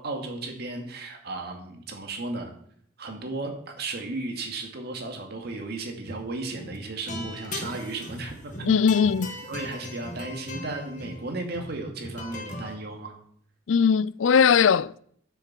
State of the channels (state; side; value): quieter; right; 4.4 dB